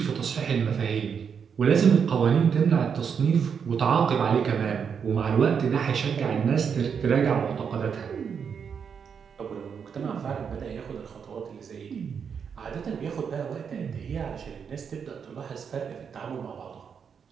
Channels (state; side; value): quieter; left; 6.8 dB